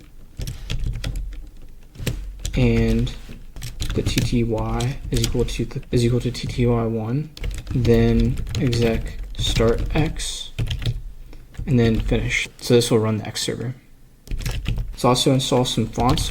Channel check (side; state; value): both; identical; correlation 1.00